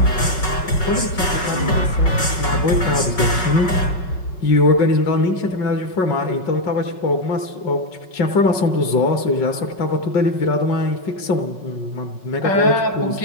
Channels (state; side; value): late; right; 5.4 ms